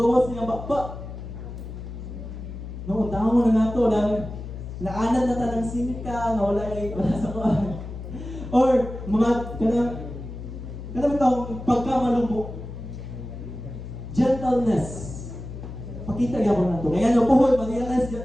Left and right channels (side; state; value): left; noise; hum, 10 dB below the sound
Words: sa iyang bakba. No, tao na nato dahil naanad na tanang simika nga wala sa kuan. Or mga kanang taong pagkamalumbo. Gentleness. Pakita gyapon nato. Kaya no puhol ma-realize